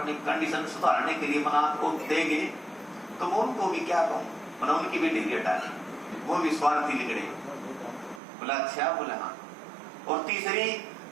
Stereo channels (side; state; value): left; drops out; at 8.2 s